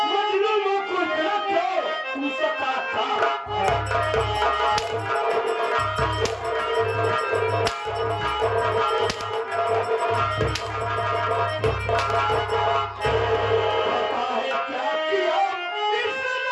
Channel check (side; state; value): both; identical; correlation 1.00